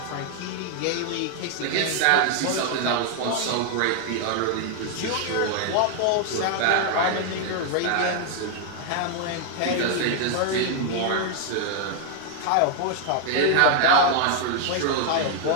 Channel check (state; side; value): different; both; correlation 0.00